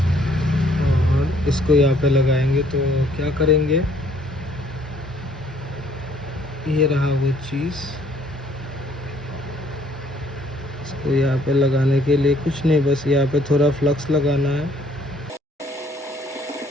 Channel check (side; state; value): both; normal; correlation 0.63